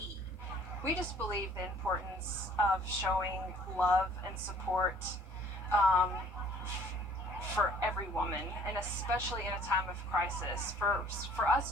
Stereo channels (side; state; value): both; normal; correlation 0.56